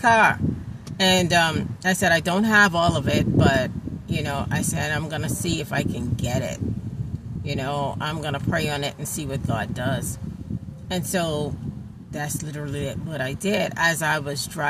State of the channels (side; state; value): both; identical; correlation 1.00